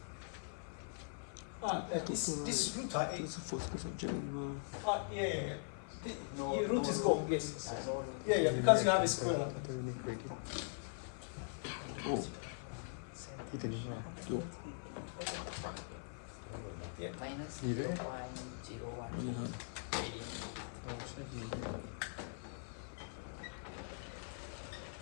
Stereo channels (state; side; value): silent; right; 50 dB below the other